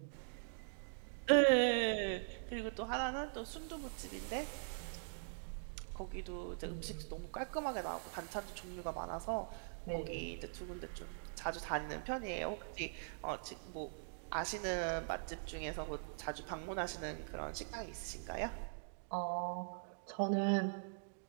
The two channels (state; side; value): silent; left; digital silence